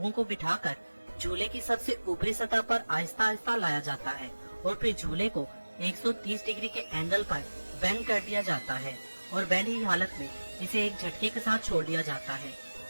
को बिठाकर झूले की सबसे ऊपरी सतह पर आहिस्ता आहिस्ता लाया जाता है और फिर झूले को 130 डिग्री के एंगल पर बेंड कर दिया जाता है और बेंड ही हालत में इसे एक झटके के साथ छोड़ दिया जाता है।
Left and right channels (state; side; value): inverted; both; correlation -1.00